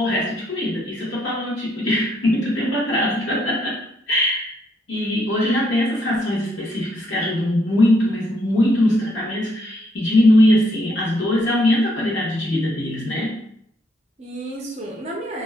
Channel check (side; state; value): both; normal; correlation 0.73